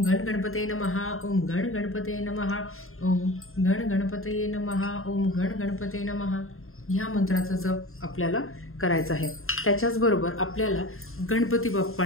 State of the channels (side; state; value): right; late; 0.61 ms